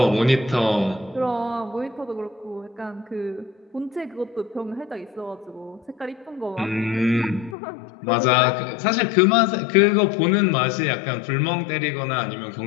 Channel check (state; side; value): drops out; right; at 7.6 s